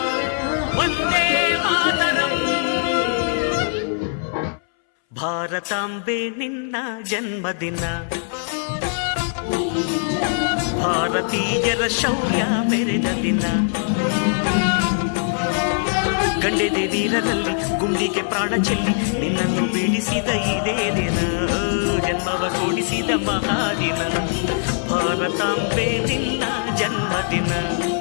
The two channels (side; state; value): right; silent; 65 dB below the other